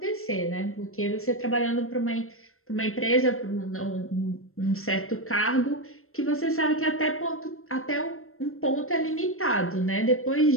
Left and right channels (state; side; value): late; right; 0.62 ms